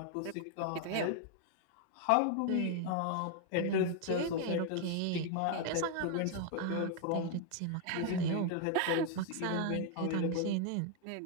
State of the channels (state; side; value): different; both; correlation 0.00